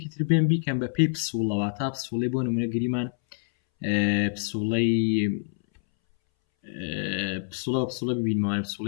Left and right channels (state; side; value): silent; right; 61 dB below the other